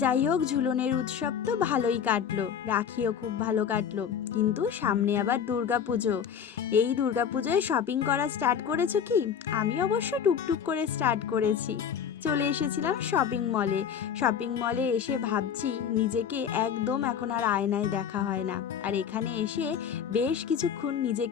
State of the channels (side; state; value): right; quieter; 7.9 dB